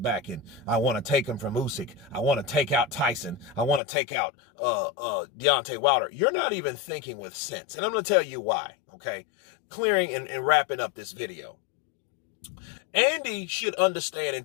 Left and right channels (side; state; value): right; drops out; at 3.8 s